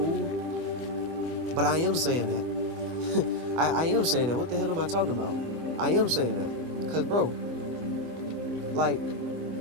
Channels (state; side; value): late; left; 24 ms